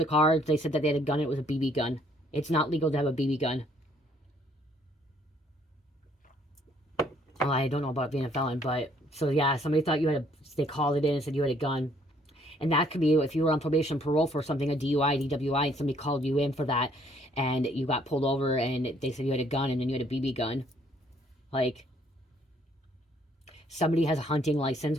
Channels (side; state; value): both; normal; correlation 0.65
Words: car. They said that they had a gun. It was a BB gun. It's not legal to have a BB gun. Well, I don't know about being a felon, but so yeah, somebody thought you had a. They called it in and said you had a gun, and that could be if you were on probation, parole for something, a DUI, DWI, and somebody called you in for that, and you got pulled over, and they said you had a gun, and then you had a BB gun, like. Somebody has a hunting license,